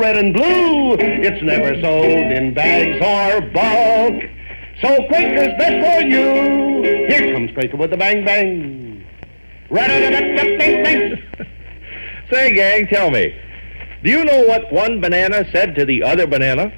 and blue. It's never sold in bags or bulk. So Quaker's best for you. Here comes Quaker with a bang bang. Say, gang, tell me, do you know what one banana said to the other banana?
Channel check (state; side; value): inverted; both; correlation -1.00